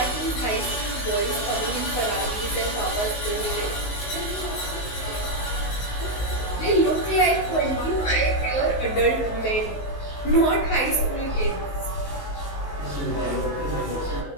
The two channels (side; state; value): right; late; 19 ms